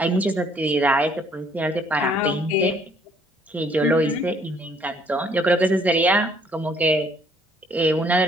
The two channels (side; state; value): both; normal; correlation 0.63